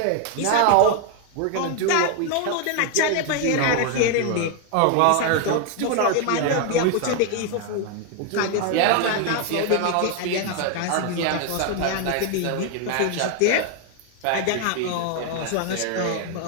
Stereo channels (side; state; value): both; different; correlation 0.01